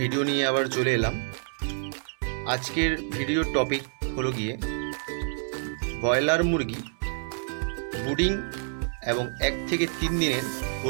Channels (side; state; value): left; silent; digital silence